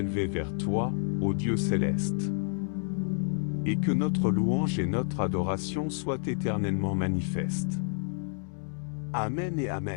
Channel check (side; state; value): right; silent; 58 dB below the other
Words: vers toi, ô Dieu céleste, et que notre louange et notre adoration soient éternellement manifestes. Amen et